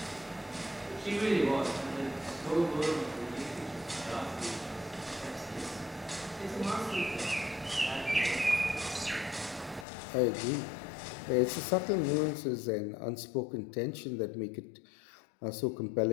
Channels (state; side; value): drops out; right; at 9.9 s